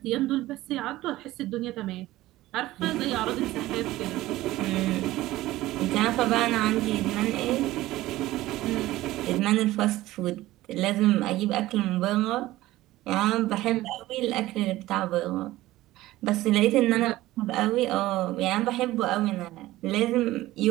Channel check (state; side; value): quieter; left; 16.7 dB